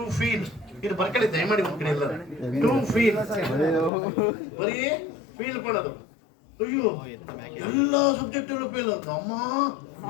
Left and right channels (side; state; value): right; drops out; at 3.9 s